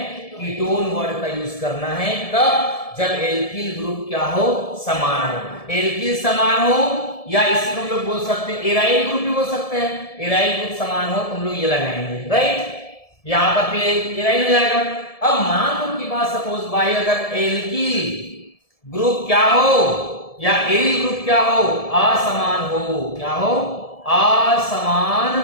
कीटोन वर्ड का यूज करना है। कब, जब एल्किल ग्रुप क्या हो, समान हो। एल्किल समान हो, या इसको हम लोग बोल सकते हैं एराइल ग्रुप भी बोल सकते हैं। एराइल ग्रुप समान हो तो हम लोग ये लगाएंगे, राइट। यहां पर फिर एराइल हो जाएगा। अब मान लो की बात, सपोज भाई अगर एल्किल ग्रुप क्या हो या एरिल ग्रुप क्या हो, असमान हो, क्या हो, असमान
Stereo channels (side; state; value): right; late; 1.7 ms